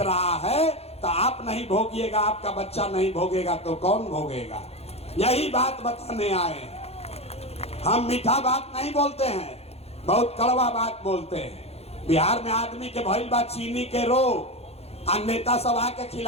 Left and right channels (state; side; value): late; right; 0.30 ms